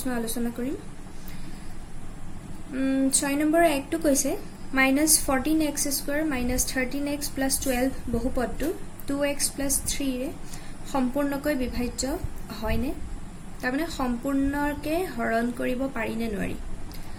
আলোচনা কৰিম। 6 নম্বৰৰ একটো কৈছে -14x² - 13x + 12 বহুপদটো 2x + 3 ৰে সম্পূৰ্ণকৈ বিভাজ্য হয়নে? তাৰমানে সম্পূৰ্ণকে হৰণ কৰিব পাৰি নে নোৱাৰি?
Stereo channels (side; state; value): both; identical; correlation 1.00